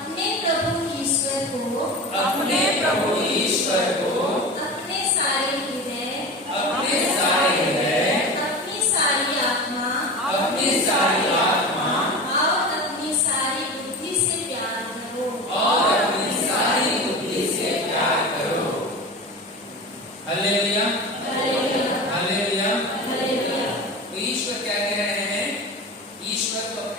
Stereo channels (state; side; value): normal; both; correlation 0.30